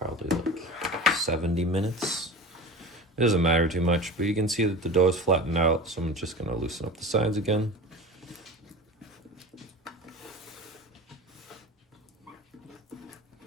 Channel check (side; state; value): both; normal; correlation 0.33